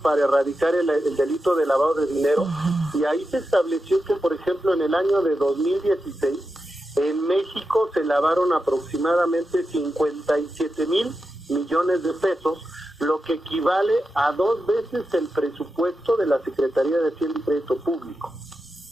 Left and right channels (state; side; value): normal; both; correlation 0.89